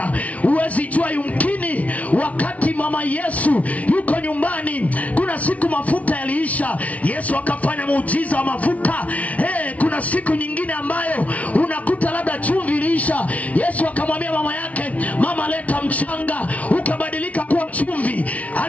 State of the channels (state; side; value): late; right; 0.067 ms